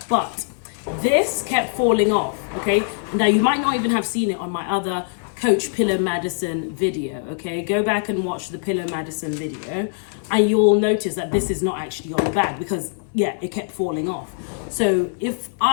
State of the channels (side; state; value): right; silent; digital silence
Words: But this kept falling off, okay? Now you might not even have seen it on my other Coach Pillow Madison video, okay? Go back and watch the Pillow Madison video and you'll notice that this is not actually on the bag because, yeah, it kept falling off. So if